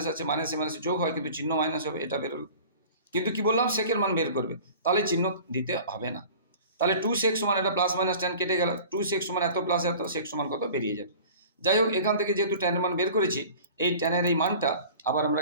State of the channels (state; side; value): inverted; both; correlation -0.42